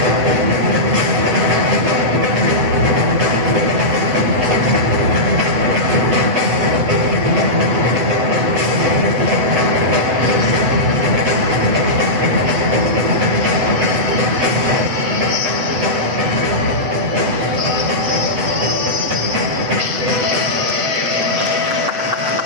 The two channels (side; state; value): left; late; 8.1 ms